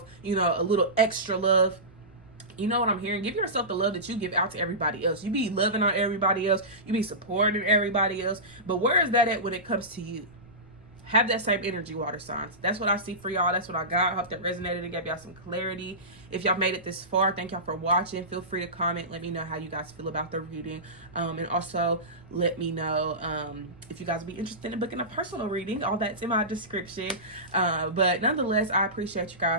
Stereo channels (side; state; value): right; noise; rumble, 28 dB below the sound